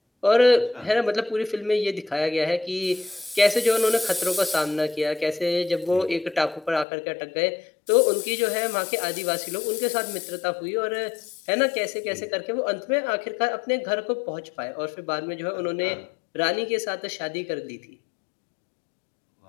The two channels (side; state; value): right; drops out; at 6.9 s